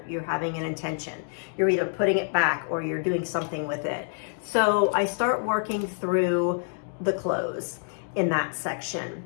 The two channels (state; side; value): silent; right; digital silence